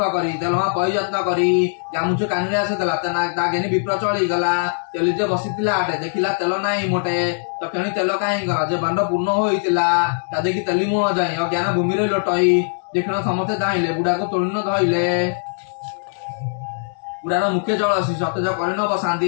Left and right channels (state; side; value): silent; right; digital silence